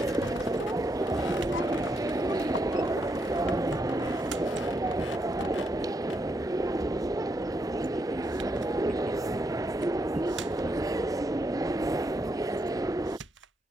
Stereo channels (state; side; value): normal; both; correlation 0.79